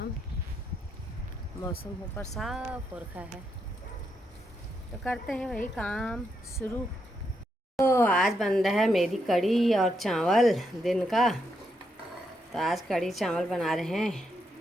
मौसम ऊपर साफ हो रखा है, तो करते हैं वही काम शुरू। तो आज बन रहा है मेरी कड़ी और चावल दिन का। तो आज कड़ी चावल बना रहे हैं।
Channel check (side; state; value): both; normal; correlation 0.80